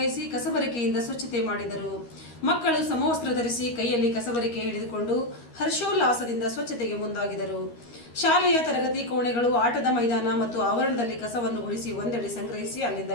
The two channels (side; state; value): right; late; 13 ms